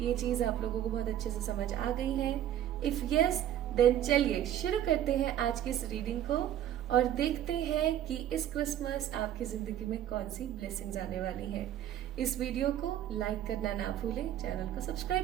चीज आप लोगों को बहुत अच्छे से समझ आ गई है। इफ यस देन चलिए शुरू करते हैं आज की इस रीडिंग को और देखते हैं कि इस क्रिसमस आपकी जिंदगी में कौन सी ब्लेसिंग्स आने वाली है। इस वीडियो को लाइक करना ना भूलें, चैनल को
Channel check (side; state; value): left; quieter; 11.4 dB